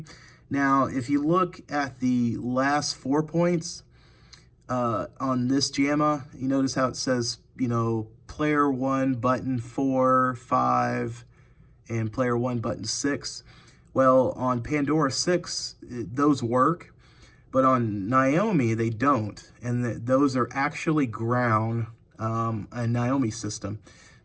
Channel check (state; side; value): identical; both; correlation 1.00